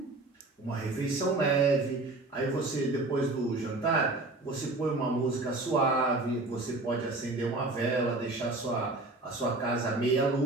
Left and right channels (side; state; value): left; quieter; 3.0 dB